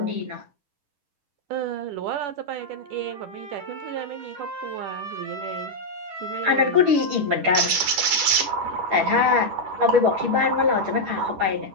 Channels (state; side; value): late; left; 10 ms